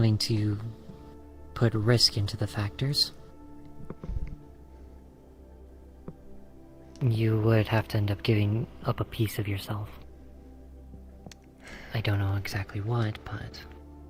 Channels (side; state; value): both; identical; correlation 1.00